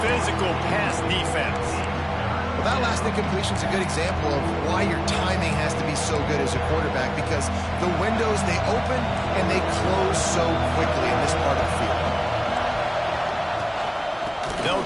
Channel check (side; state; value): both; identical; correlation 1.00